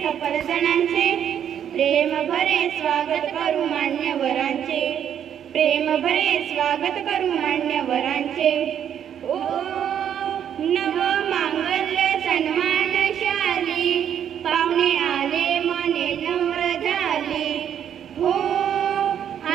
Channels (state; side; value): quieter; left; 9.3 dB